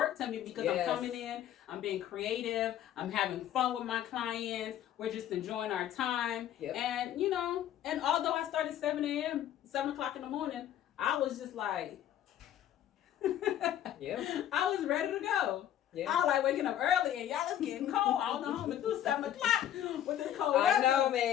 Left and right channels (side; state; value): right; quieter; 11.2 dB